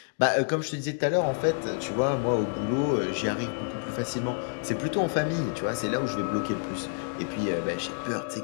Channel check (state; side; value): silent; right; digital silence